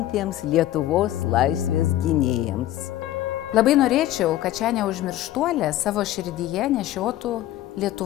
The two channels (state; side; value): quieter; right; 13.9 dB